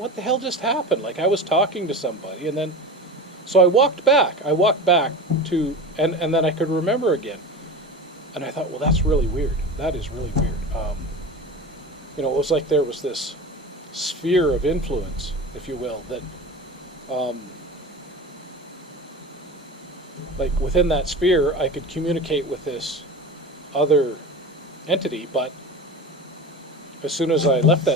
the hell just happened? Like, I was talking to somebody, and then, so I walked back to, and then I could remember again. And I thought, well, that's really weird. That is really weird. It was like there was this sphere of influence, if you will, that, like within that sphere, I could communicate with this other entity, but as soon as I left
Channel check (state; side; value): normal; both; correlation 0.30